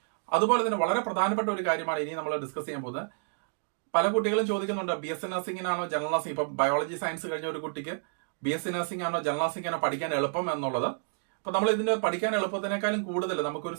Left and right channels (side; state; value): left; silent; digital silence